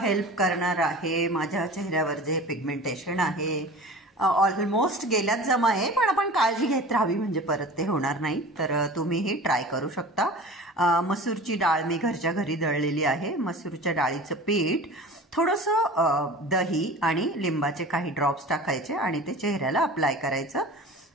करणार आहे. माझ्या चेहऱ्यावर जे पिगमेंटेशन आहे ऑलमोस्ट गेल्यात जमा आहे, पण आपण काळजी घेत राहावी म्हणजे परत ते होणार नाही. तर तुम्हीही ट्राय करू शकता. मसूरची डाळ मी घरच्या घरी दळलेली आहे. मसूरच्या डाळीचं पीठ, थोडंसं दही आणि लिंबाचे काही ड्रॉप्स टाकायचे आणि ते चेहऱ्याला अप्लाय करायचं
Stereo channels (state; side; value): normal; both; correlation 0.38